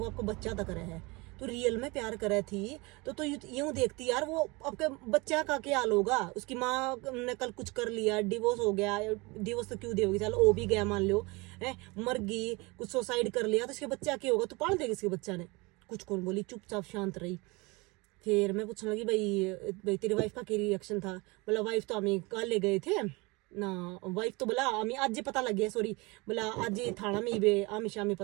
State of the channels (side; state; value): left; quieter; 25.4 dB